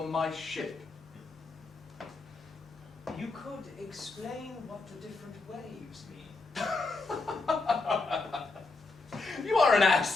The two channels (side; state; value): right; quieter; 3.7 dB